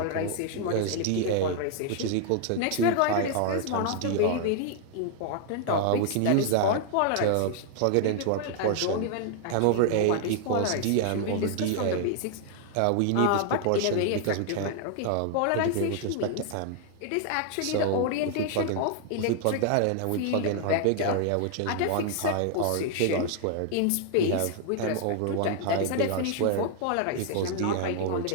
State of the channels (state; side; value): different; both; correlation 0.00